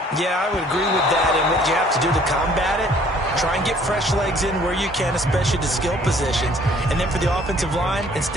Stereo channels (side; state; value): both; normal; correlation 0.57